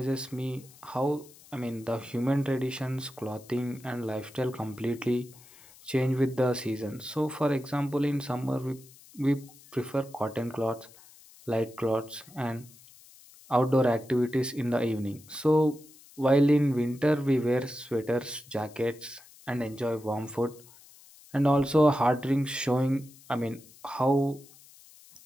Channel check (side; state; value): left; noise; hiss, 23 dB below the sound